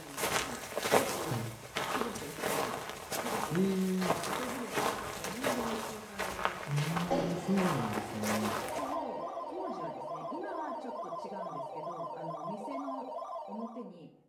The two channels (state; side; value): identical; both; correlation 1.00